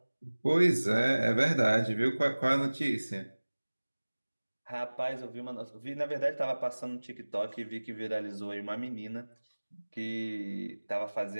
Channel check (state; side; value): inverted; both; correlation -1.00